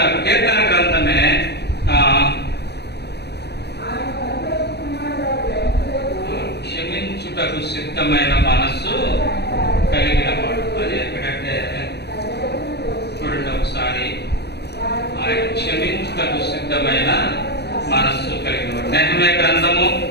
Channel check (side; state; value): right; late; 0.49 ms